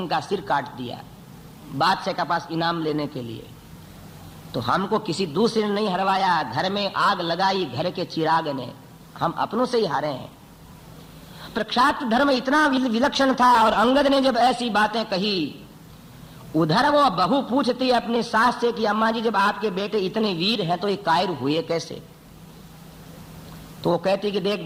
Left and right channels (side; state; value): both; identical; correlation 1.00